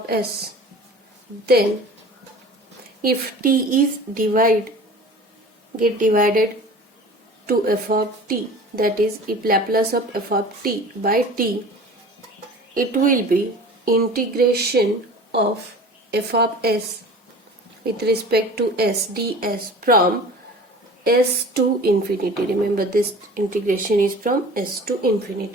s, then if t is get divided to f of t, that is if Laplace of f of t by t, it will be integration of f of s with respect to s ds from s to infinity. Remember, this integration is from s to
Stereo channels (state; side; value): normal; both; correlation 0.41